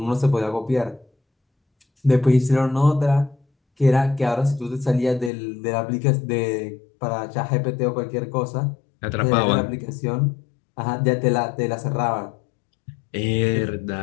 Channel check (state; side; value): drops out; right; at 5.3 s